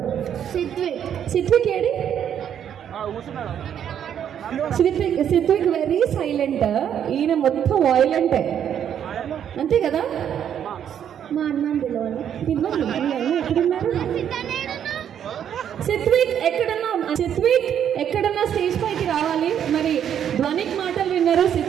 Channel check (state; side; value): quieter; left; 9.2 dB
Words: సిత్విక్ ఏడి? సిత్విక్ వెరీ సైలెంట్, ఈయన మొత్తం వాయిలెంటే, అంతే కదా? మా అన్న పిలవాలి. ఎక్కడున్నారు సిత్విక్? ఎక్కడన్నా స్టేజ్ పైకి రావాలి. మరి ధ్వనిక్ మాటలు విన్నారు,